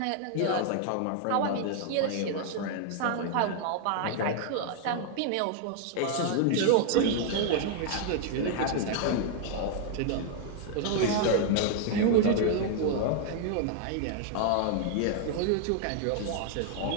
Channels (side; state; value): both; different; correlation 0.00